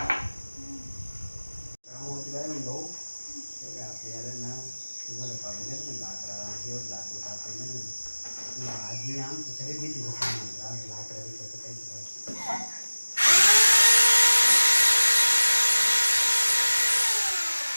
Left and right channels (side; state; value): both; inverted; correlation -1.00